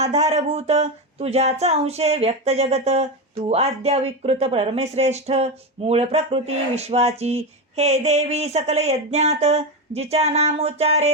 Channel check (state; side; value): normal; both; correlation 0.13